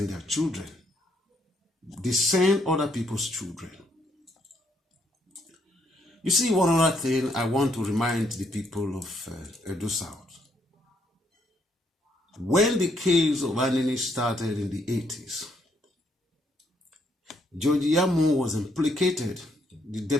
their children. They send other people's children. You see, one other thing I want to remind the people of Edo South. When the case of Anini started in the 80s, George Yamu was implicated. The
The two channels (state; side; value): normal; both; correlation 0.72